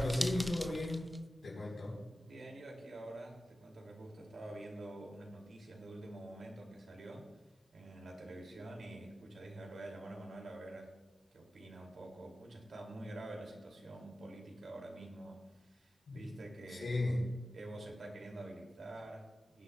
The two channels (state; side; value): normal; both; correlation 0.94